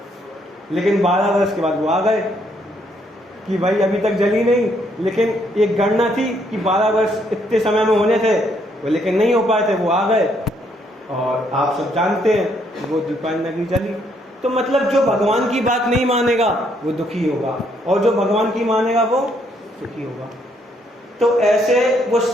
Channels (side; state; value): both; normal; correlation 0.71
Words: लेकिन 12 वर्ष के बाद वो आ गए कि भाई अभी तक जली नहीं, लेकिन एक गणना थी कि 12 वर्ष इतने समय में होने थे, वो लेकिन नहीं हो पाए थे, वो आ गए। और आप सब जानते हैं वो दीपायन नगरी जली। तो मतलब जो भगवान की बात नहीं मानेगा वो दुखी होगा, और जो भगवान की मानेगा वो सुखी होगा। तो ऐसे वो